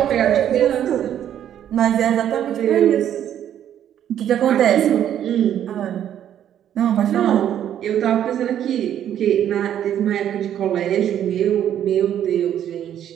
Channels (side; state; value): left; quieter; 10.4 dB